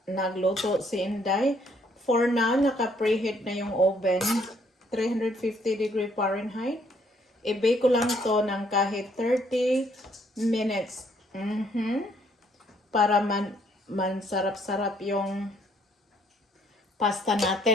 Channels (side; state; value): both; normal; correlation 0.67